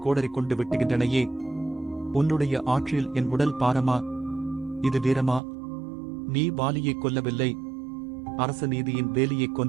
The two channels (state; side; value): drops out; left; at 5.4 s